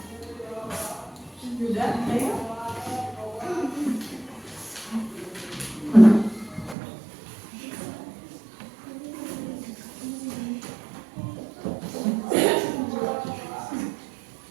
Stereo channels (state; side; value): drops out; left; at 6.8 s